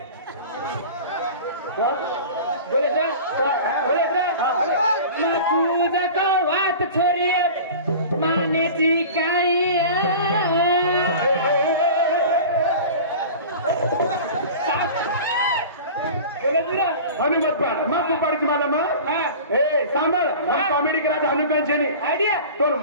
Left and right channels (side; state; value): both; inverted; correlation -0.37